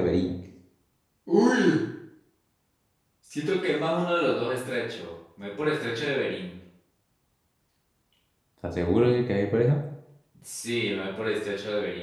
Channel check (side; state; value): both; identical; correlation 1.00